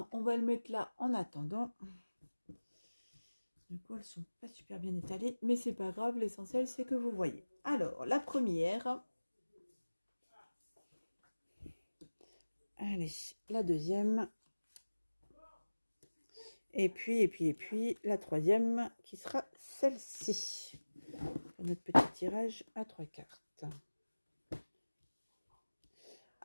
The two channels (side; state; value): both; inverted; correlation -1.00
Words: on va le mettre là en attendant. Du coup, elles sont pas super bien étalées, mais c'est pas grave, l'essentiel c'est que vous voyez. Alors, la première. Allez, la deuxième. Et puis, la troisième qui sera celle-ci. Notre petit tirage à 3 cartes.